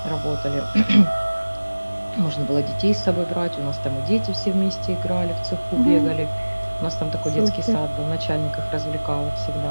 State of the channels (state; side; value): inverted; both; correlation -1.00